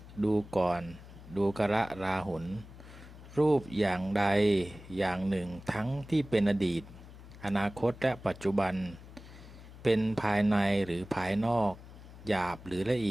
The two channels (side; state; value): left; noise; hum, 17 dB below the sound